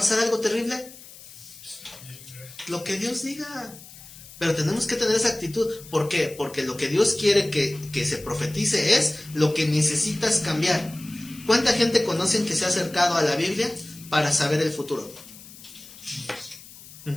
algo terrible, lo que Dios diga. Pero tenemos que tener esa actitud. ¿Por qué? Porque lo que Dios quiere que se profetice es lo que necesitas cambiar. ¿Cuánta gente conocen que se ha acercado a la Biblia para saber el futuro?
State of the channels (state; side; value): noise; left; hiss, 18 dB below the sound